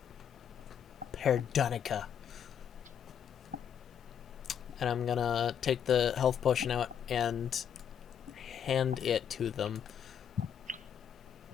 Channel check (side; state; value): right; quieter; 8.4 dB